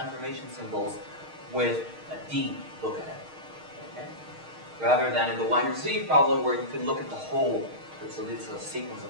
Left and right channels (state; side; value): late; left; 6.4 ms